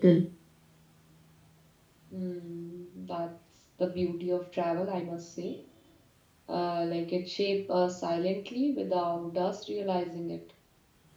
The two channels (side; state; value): both; identical; correlation 1.00